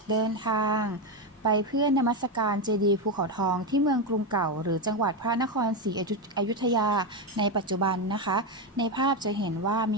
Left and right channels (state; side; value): normal; both; correlation 0.10